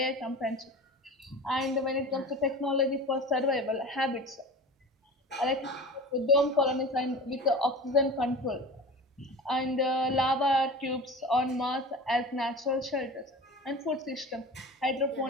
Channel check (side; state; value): both; normal; correlation 0.35